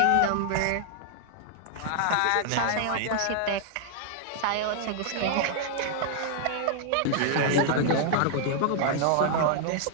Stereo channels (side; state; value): both; different; correlation 0.00